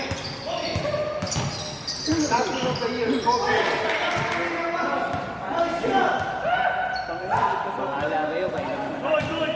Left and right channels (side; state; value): both; identical; correlation 1.00